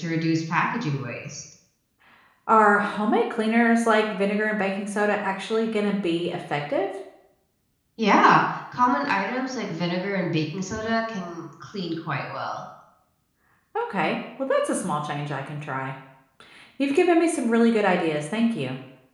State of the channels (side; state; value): both; identical; correlation 1.00